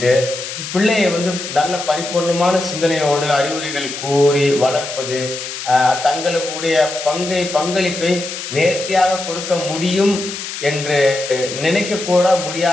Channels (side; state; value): left; noise; hiss, 8 dB below the sound